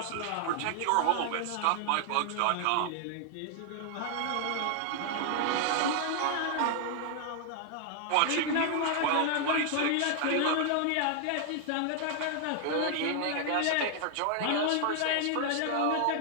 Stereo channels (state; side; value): different; both; correlation 0.00